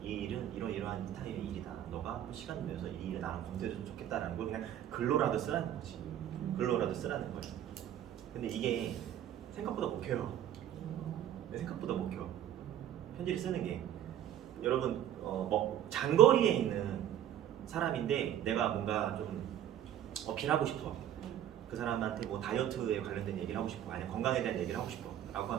이 일은 이러이러한 스타일의 일이다. 너가 시간 내서 이 일을 나랑 검토해줬으면 좋겠다라는 걸 그냥 글로라도 쓰라는 거지. 글로라도 쓰라는 거예요. 근데 이게 생각보다 못 켜요. 생각보다 못 켜. 편지를 쓰는 게 여러분 뭐 장거리에 있는 사람인데 내가 뭔가 좀 어필하고 싶어. 그 사람한테 뭐 다이어트에 관련된 얘기를 하고 싶어. 아니면 건강에 대한 얘기를 하고 싶어. 라고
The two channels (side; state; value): left; quieter; 10.9 dB